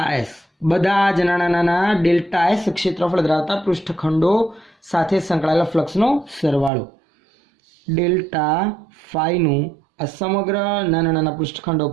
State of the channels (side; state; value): left; drops out; at 6.7 s